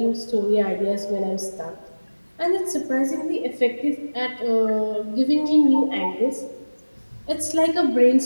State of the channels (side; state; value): both; inverted; correlation -1.00